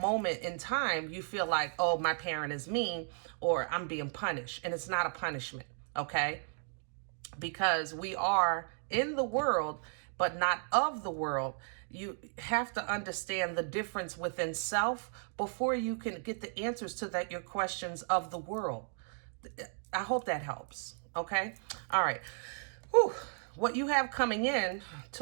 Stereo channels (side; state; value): left; silent; 55 dB below the other